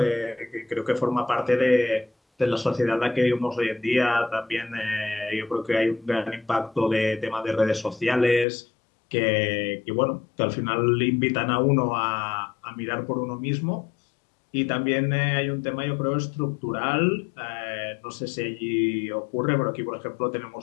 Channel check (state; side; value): drops out; right; at 8.5 s